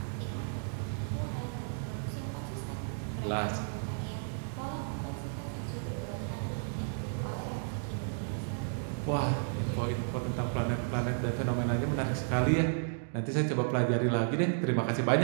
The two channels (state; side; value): silent; left; digital silence